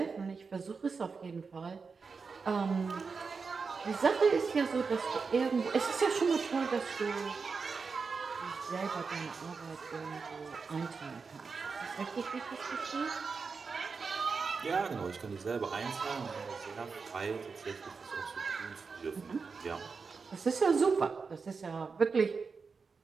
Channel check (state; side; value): quieter; left; 5.0 dB